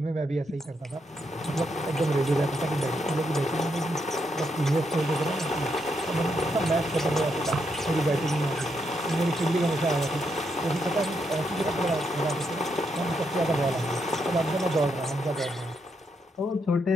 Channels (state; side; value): normal; both; correlation 0.79